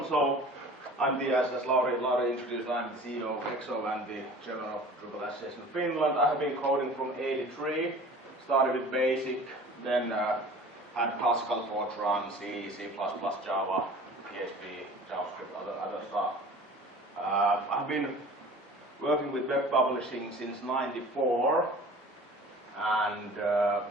So I'm the, as Lauri introduced, I'm the CEO of EXO and the chairman of Drupal Association of Finland. I have been coding from '83, started with BASIC, then had classical Fortran, C, C++, Java, PHP, JavaScript, other stuff. I've been working with web publishing since '94 and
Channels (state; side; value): normal; both; correlation 0.43